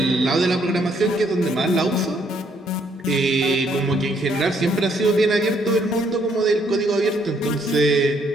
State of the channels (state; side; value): normal; both; correlation 0.69